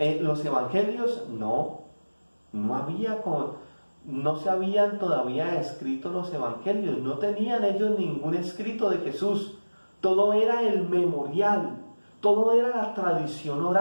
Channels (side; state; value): both; inverted; correlation -1.00